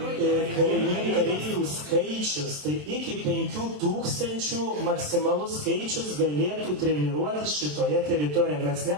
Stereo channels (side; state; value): left; late; 27 ms